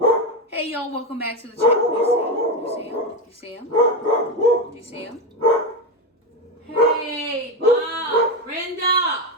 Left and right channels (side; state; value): both; normal; correlation 0.13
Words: Hey, y'all, welcome back to the channel. You see him? You see him? Do you see him? Hey, Bob, Brenda.